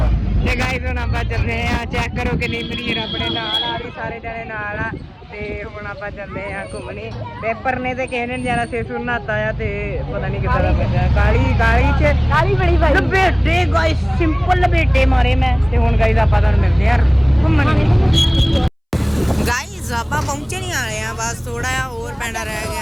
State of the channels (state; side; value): identical; both; correlation 1.00